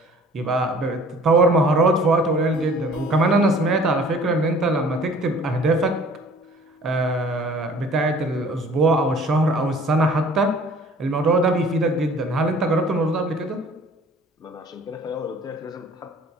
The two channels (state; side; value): normal; both; correlation 0.51